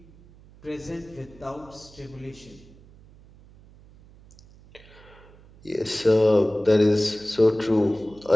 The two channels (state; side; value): noise; right; hum, 24 dB below the sound